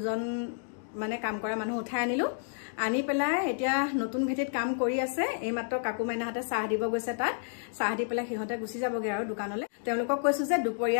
মানে কাম কৰা মানুহ উঠাই আনিলোঁ আনি পেলাই এতিয়া নতুন ভেটিত কাম কৰি আছে এইমাত্ৰ কাকু মাইনাহঁতে চাহ দিব গৈছে তাত চাহ দি পেলাই সিহঁতে গুচি যাবগে আৰু দোকানলৈ তেওঁলোকক কৈছো যে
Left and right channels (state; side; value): silent; right; digital silence